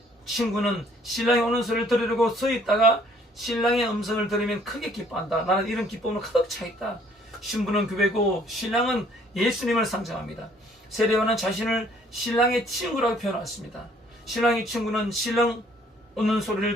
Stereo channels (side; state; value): both; normal; correlation 0.61